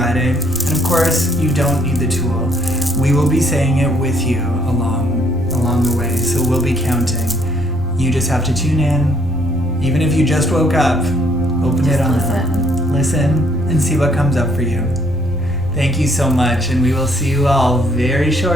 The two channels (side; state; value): left; noise; rumble, 13 dB below the sound